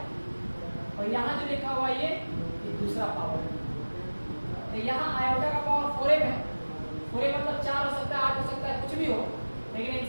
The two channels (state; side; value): inverted; both; correlation -1.00